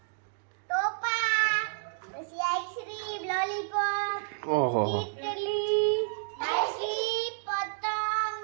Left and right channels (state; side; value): silent; left; digital silence